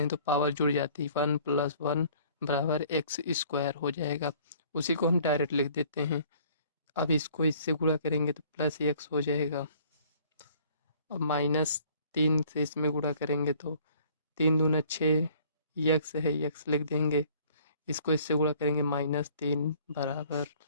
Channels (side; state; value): both; inverted; correlation -0.56